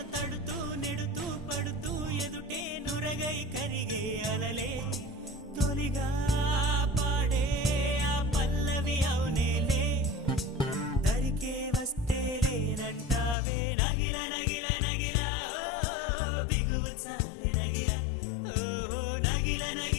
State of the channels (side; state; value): right; drops out; at 13.4 s